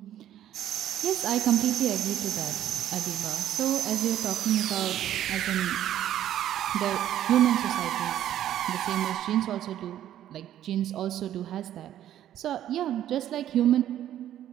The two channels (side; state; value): left; quieter; 11.7 dB